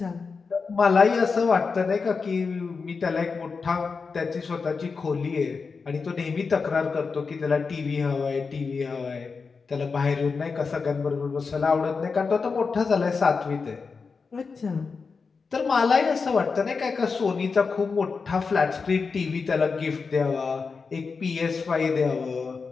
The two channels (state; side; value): quieter; right; 4.9 dB